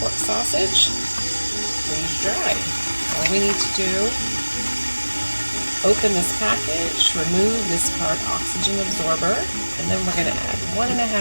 sausage, freeze dry. All we need to do, open this package, remove this hard oxygen absorber, and then we're going to add 1.5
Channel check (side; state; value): both; inverted; correlation -1.00